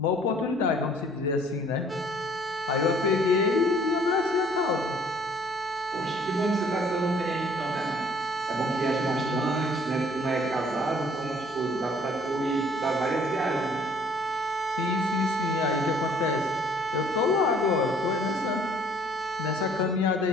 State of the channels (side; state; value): left; noise; hum, 28 dB below the sound